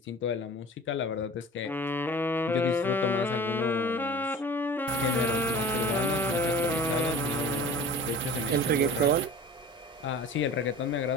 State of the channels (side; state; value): both; normal; correlation 0.40